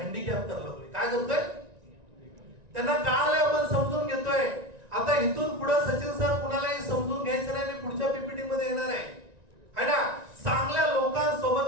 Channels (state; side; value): late; left; 1.9 ms